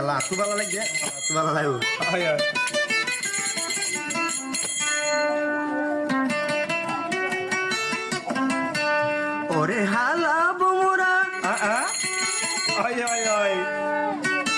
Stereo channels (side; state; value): both; identical; correlation 1.00